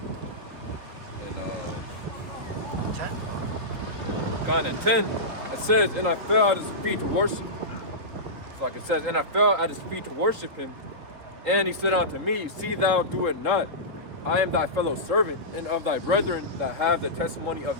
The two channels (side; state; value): left; late; 3.8 ms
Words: and 10. kind of 10, it says, and I fell at his feet to worship. Like it says, and I fell at his feet to worship him. And he said unto me, see thou do it not. I am thy fellow servant, and of thy brethren that have the testimony of